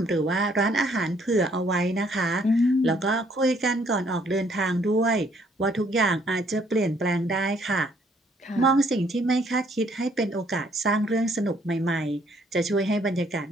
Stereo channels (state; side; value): normal; both; correlation 0.65